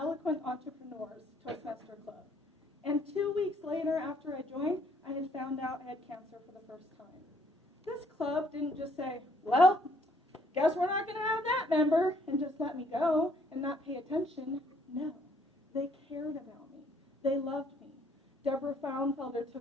Entrepreneurs Toastmaster Club. And 2 weeks later, after I joined, I had found out I had cancer for the first time. This club didn't just say, well, guess we're not going to have that member, and just let me go and not pay attention. No, they cared about me. They loved me. Deborah Frauenfelder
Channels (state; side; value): normal; both; correlation 0.65